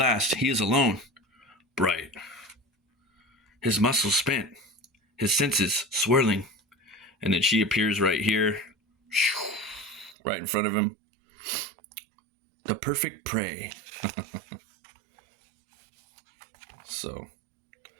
he is alone. Bright. His muscles spent. His senses swirling. And then she appears right here. Right in front of him. The perfect prey. So,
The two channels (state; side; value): drops out; left; at 10.2 s